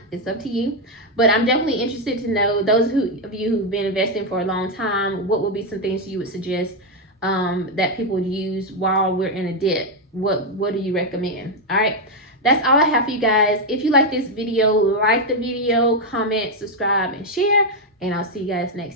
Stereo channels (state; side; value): normal; both; correlation 0.03